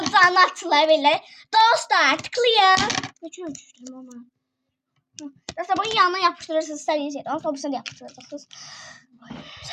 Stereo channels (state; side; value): identical; both; correlation 1.00